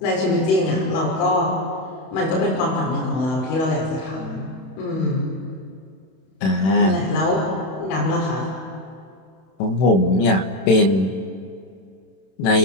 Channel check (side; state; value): right; late; 31 ms